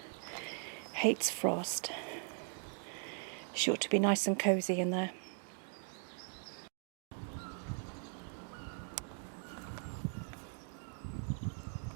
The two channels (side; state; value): left; silent; 51 dB below the other